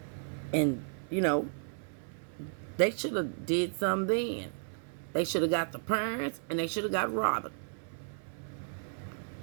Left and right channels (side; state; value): left; silent; 55 dB below the other